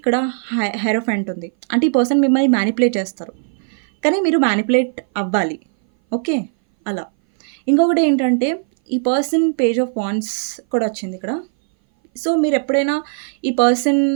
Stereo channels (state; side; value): silent; left; 60 dB below the other